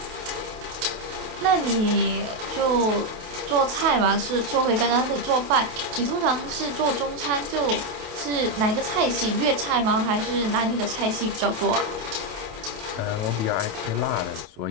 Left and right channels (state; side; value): late; left; 28 ms